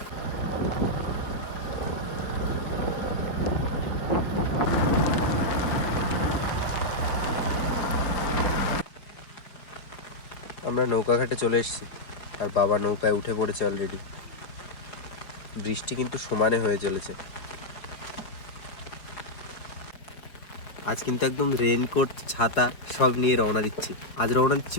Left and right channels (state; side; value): late; right; 4.7 ms